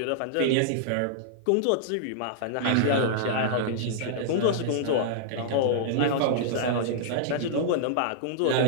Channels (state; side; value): different; both; correlation -0.02